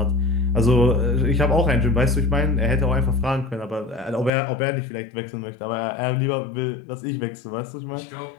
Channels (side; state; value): right; drops out; at 4.3 s